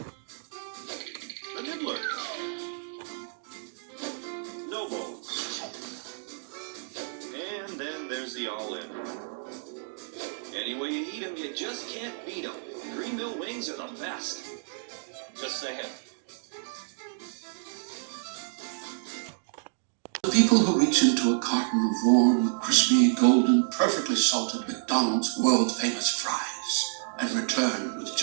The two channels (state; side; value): silent; left; digital silence